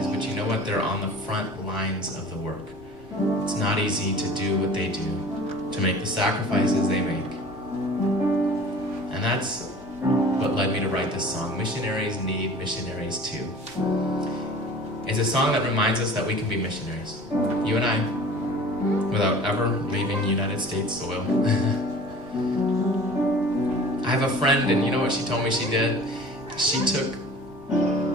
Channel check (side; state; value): both; normal; correlation 0.43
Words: but you know what? They're on the front lines of the work. It's not easy to do what they do, to make the sacrifices they make. And that's what led me to write this song, Missionaries Need Missionaries Too. It's a song that reminds us that we can be missionaries. You and I, without ever leaving United States soil. I have a friend, and you know what she told me she did? She took